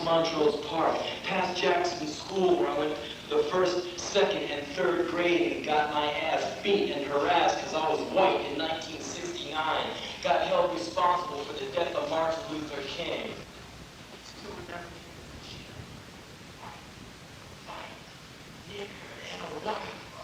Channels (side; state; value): both; identical; correlation 1.00